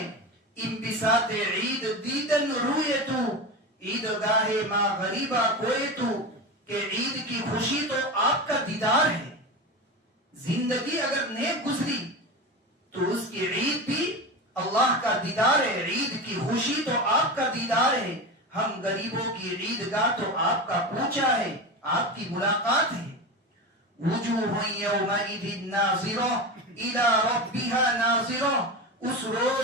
انبساط عید دیدن روئے تو عیدگاہ ما غریبہ کوئے تو, کہ عید کی خوشی تو آپ کا دیدار ہے. زندگی اگر نیک گزری تو اس کی عید بھی اللہ کا دیدار ہے, عید کی خوشی تو آپ کا دیدار ہے. ہم غریبوں کی عیدگاہ تو آپ کا کوچہ ہے, آپ کی ملاقات ہے. وجوہ یومئذ ناظرہ الی ربہا ناظرہ, اس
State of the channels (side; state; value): both; normal; correlation 0.23